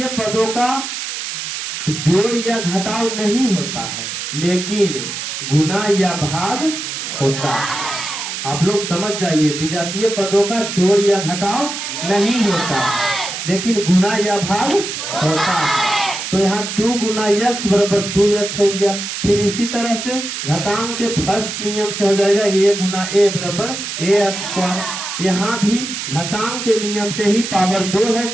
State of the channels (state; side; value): noise; right; hiss, 5 dB below the sound